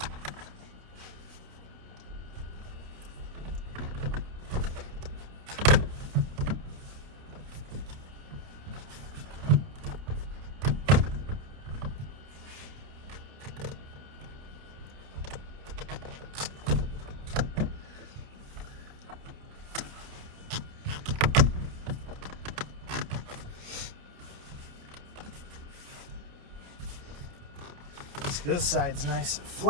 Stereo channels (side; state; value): left; late; 30 ms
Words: This side's nice and